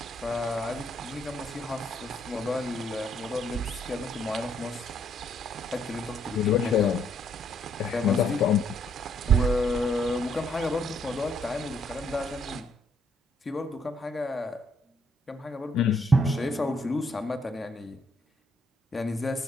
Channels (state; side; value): normal; both; correlation 0.70